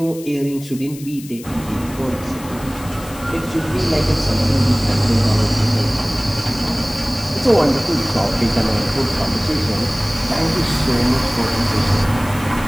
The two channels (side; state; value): left; noise; hiss, 17 dB below the sound